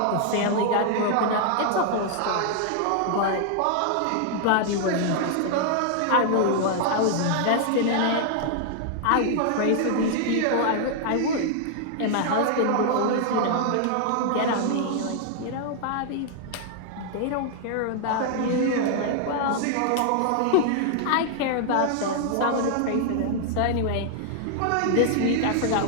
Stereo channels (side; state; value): both; different; correlation 0.00